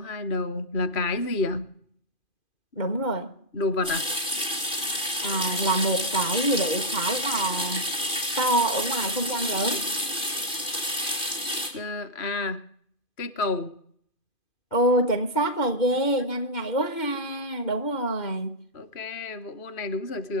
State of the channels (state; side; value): late; right; 2.5 ms